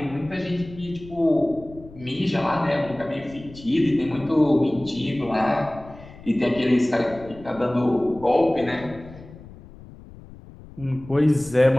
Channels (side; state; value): left; noise; rumble, 18 dB below the sound